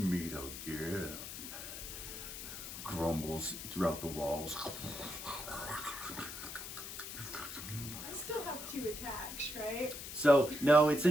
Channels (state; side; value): noise; left; hiss, 9 dB below the sound